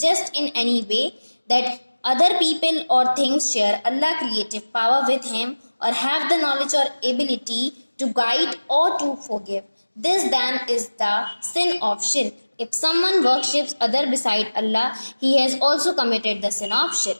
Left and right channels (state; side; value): inverted; both; correlation -1.00